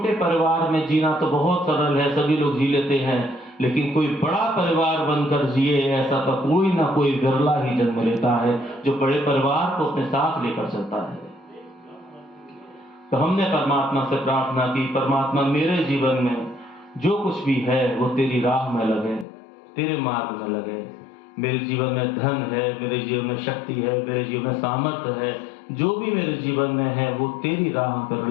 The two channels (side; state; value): right; drops out; at 19.2 s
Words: परिवार में जीना तो बहुत सरल है, सभी लोग जी लेते हैं, लेकिन कोई बड़ा परिवार बनकर जिए, ऐसा तो कोई ना कोई विरला ही जन्म लेता है जो बड़े परिवार को अपने साथ लेकर चलता है। तो हमने परमात्मा से प्रार्थना की, परमात्मा मेरे जीवन में जो कुछ भी है वो तेरी राह में लगे, तेरे मार्ग में लगे। मेरे जीवन में धन है, मेरे जीवन में शक्ति है, मेरे जीवन में सामर्थ्य है, जो भी मेरे जीवन में है वो तेरी राह पर